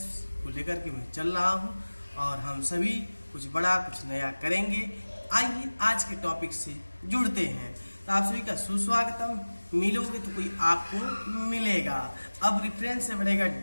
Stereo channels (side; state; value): both; inverted; correlation -1.00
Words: को लेकर के मैं चल रहा हूँ और हम सभी कुछ बड़ा कुछ नया करेंगे। आइए आज के टॉपिक से जुड़ते हैं। तो आप सभी का सुस्वागतम। मिलोगे तो कोई आपको मिलेगा। अब रेफरेंस से बढ़ेगा